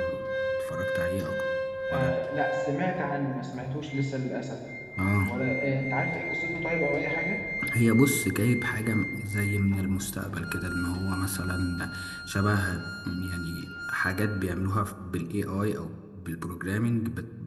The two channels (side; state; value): both; identical; correlation 1.00